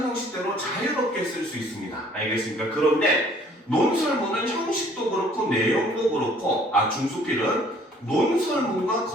형식대로 자유롭게 쓸 수 있습니다. 알겠습니까? 그런데 논설문은 형식도 그렇고 내용도 그렇고 중수필은 논설문과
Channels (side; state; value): both; normal; correlation 0.58